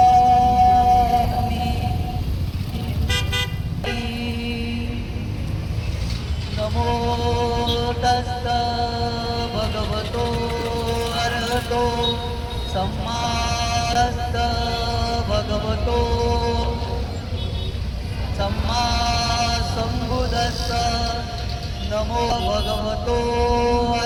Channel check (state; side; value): identical; both; correlation 1.00